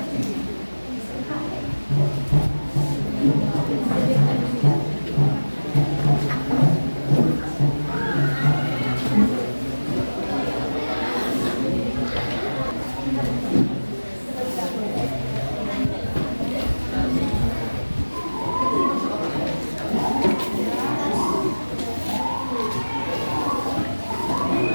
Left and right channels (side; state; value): both; inverted; correlation -1.00